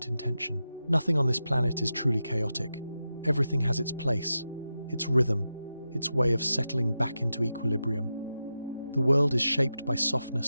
intention. Nothing on this planet is truly chaotic. Everything has its place, its rhythm, its way of settling back into equilibrium. The world is shaped by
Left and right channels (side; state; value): both; inverted; correlation -0.90